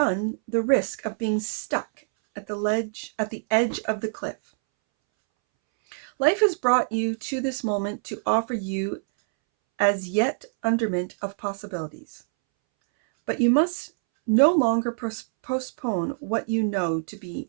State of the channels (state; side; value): silent; left; 62 dB below the other